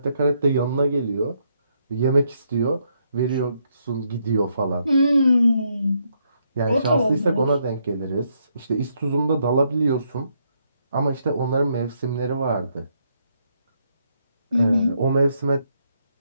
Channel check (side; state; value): both; inverted; correlation -0.75